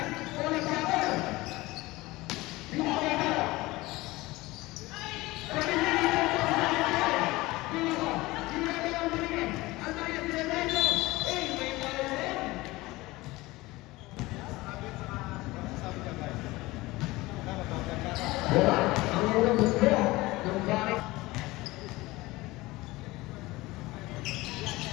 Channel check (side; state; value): right; quieter; 20.2 dB